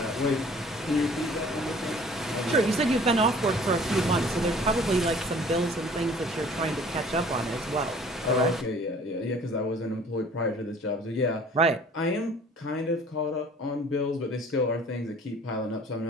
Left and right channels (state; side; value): normal; both; correlation 0.51